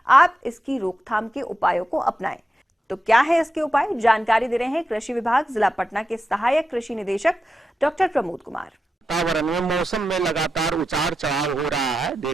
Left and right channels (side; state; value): both; normal; correlation 0.89